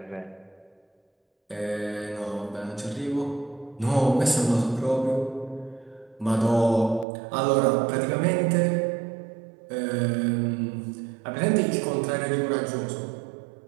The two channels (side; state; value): left; drops out; at 7.1 s